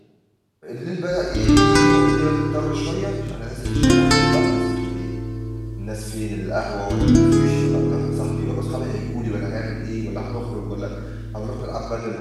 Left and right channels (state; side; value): identical; both; correlation 1.00